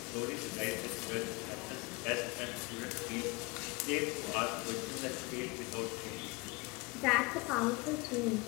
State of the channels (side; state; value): right; quieter; 26.1 dB